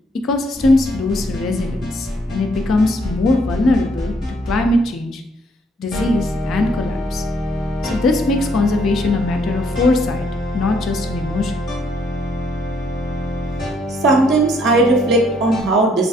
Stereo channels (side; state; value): both; normal; correlation 0.68